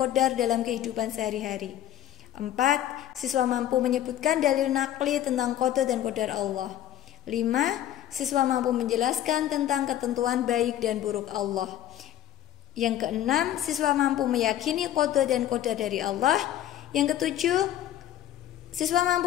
dalam kehidupan sehari-hari. 4. Siswa mampu menyebutkan dalil nakli tentang qada dan qadar Allah. 5. Siswa mampu menjelaskan tentang ketentuan baik dan buruk Allah. Yang keenam, siswa mampu meyakini qada dan qadar dari Allah. Yang ketujuh, siswa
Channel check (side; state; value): right; quieter; 12.0 dB